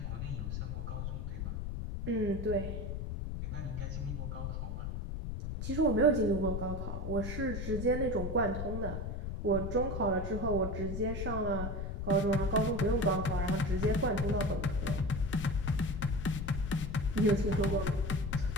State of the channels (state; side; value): noise; left; rumble, 4 dB below the sound